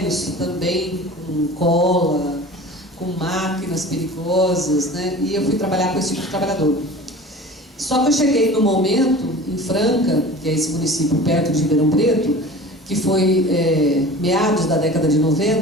também, com cola, com máquinas perigosas, né? E eu fui trabalhar com esse tipo de trabalhador. Só que eu cheguei no momento, em Franca, que é esse município perto de Ribeirão Preto, que foi meados da década de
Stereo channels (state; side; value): normal; both; correlation 0.39